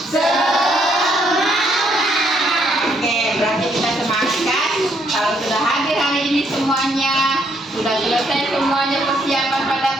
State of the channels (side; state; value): both; normal; correlation 0.71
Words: Kalau sudah hadir hari ini semuanya, sudah selesai semuanya persiapan pada